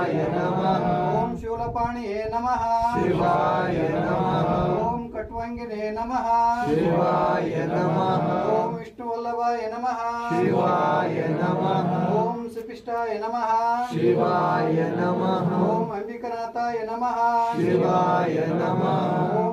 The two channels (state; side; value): identical; both; correlation 1.00